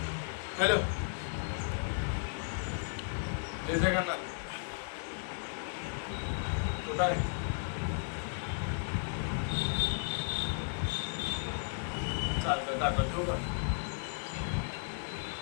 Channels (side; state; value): right; silent; 55 dB below the other